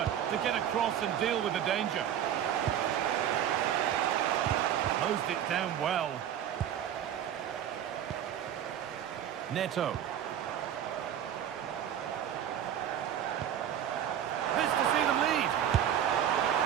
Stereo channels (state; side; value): quieter; left; 9.9 dB